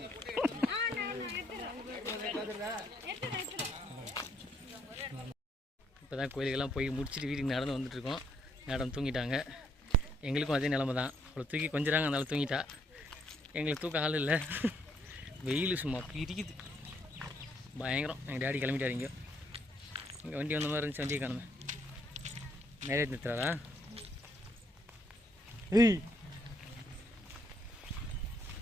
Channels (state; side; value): normal; both; correlation 0.71